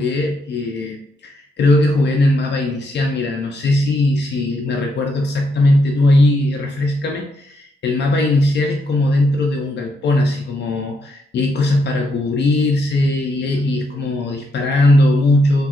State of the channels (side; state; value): both; normal; correlation 0.78